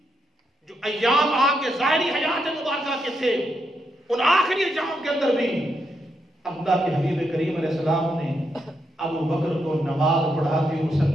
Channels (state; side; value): normal; both; correlation 0.81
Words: جو ایام آپ کے ظاہری حیات مبارکہ کے تھے ان آخری ایام کے اندر بھی اللہ کے حبیب کریم علیہ السلام نے ابو بکر کو نماز پڑھاتی